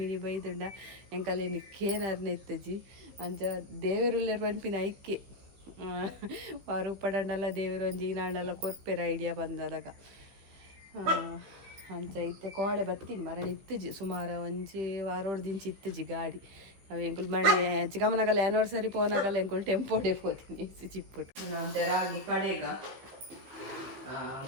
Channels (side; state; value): left; late; 15 ms